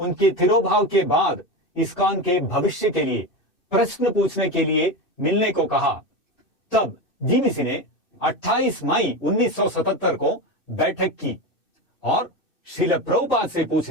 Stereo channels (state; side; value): late; right; 2.6 ms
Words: तिरोभाव के बाद इस्कॉन के भविष्य के लिए प्रश्न पूछने के लिए मिलने को कहा, तब जीबीसी ने 28 मई 1977 को बैठक की और शील प्रभुपाद से